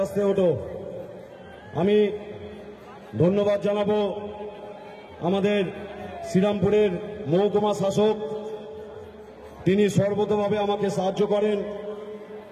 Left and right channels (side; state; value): both; identical; correlation 1.00